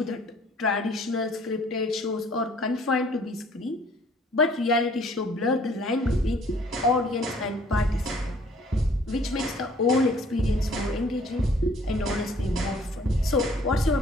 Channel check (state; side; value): normal; both; correlation 0.57